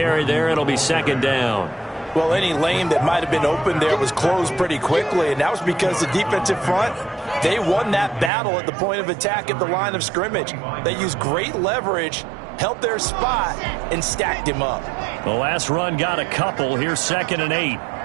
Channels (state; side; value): drops out; left; at 8.3 s